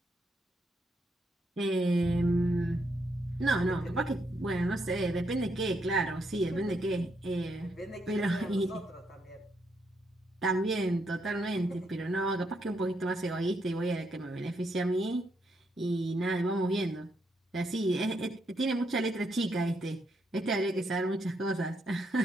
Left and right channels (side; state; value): both; normal; correlation 0.78